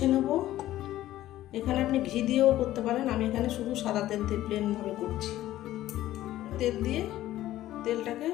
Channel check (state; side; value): quieter; right; 14.3 dB